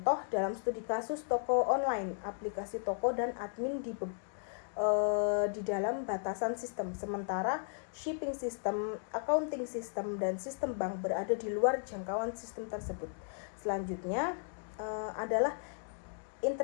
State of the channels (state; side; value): silent; right; digital silence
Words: dalam studi kasus toko online, aplikasi toko dan admin di dalam batasan sistem, sementara shipping system, accounting system, dan sistem bank berada di luar jangkauan sistem tersebut. Selanjutnya adalah